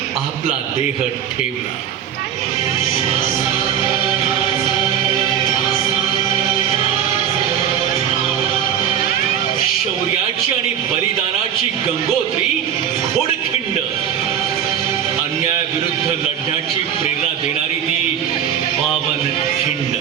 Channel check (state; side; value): quieter; left; 9.2 dB